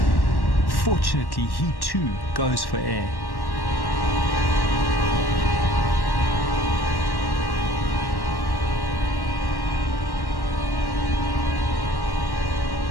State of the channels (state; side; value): late; right; 1.1 ms